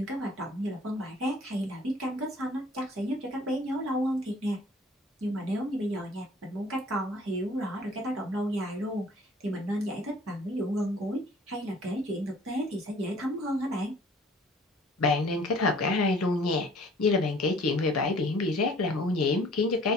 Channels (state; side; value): normal; both; correlation 0.53